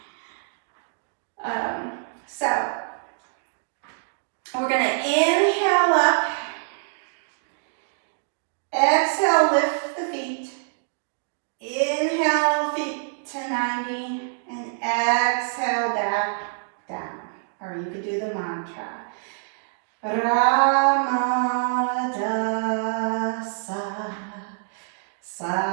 So, we're going to inhale up, exhale, lift the feet, inhale, feet to 90, and exhale, back down. Or you could do the mantra.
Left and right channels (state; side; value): silent; left; digital silence